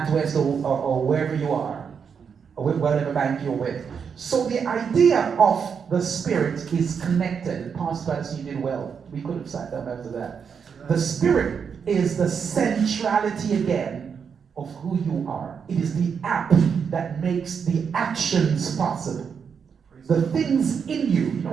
or wherever you are, or whatever bank you're with. So the idea of the spirit is connected. Pastor Patterson, you did well. We could have sat down after that. The spirit is the centrality again of who you are. It is the app that makes the actions possible. The things in you. You know,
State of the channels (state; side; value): quieter; left; 6.6 dB